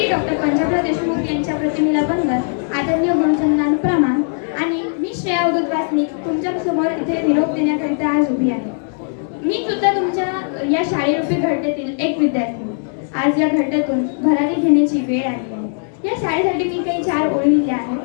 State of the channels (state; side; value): silent; right; 67 dB below the other